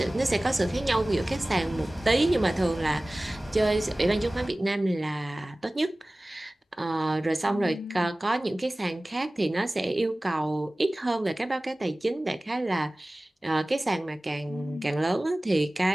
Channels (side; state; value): both; normal; correlation 0.98